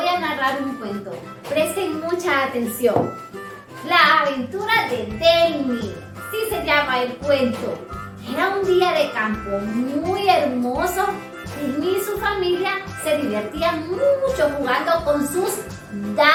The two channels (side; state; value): both; identical; correlation 1.00